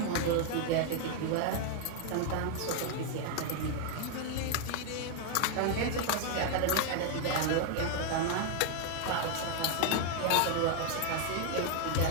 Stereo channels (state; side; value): different; both; correlation 0.00